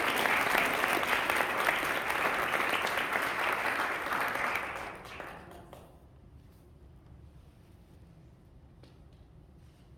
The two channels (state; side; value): identical; both; correlation 1.00